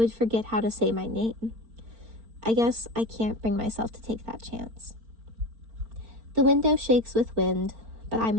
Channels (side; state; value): left; late; 4.4 ms